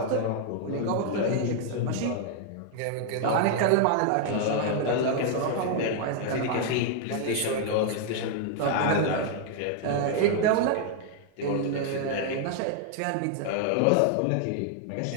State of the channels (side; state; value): both; different; correlation 0.00